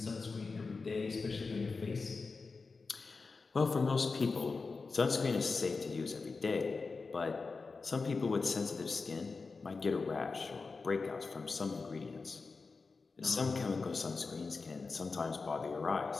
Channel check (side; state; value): right; quieter; 4.3 dB